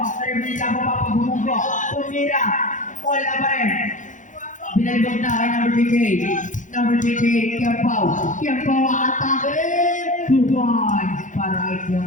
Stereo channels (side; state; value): right; late; 0.37 ms